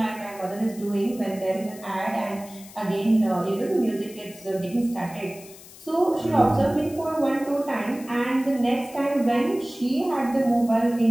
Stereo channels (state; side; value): noise; left; hiss, 19 dB below the sound